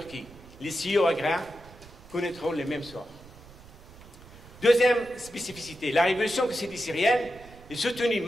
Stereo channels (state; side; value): noise; right; rumble, 20 dB below the sound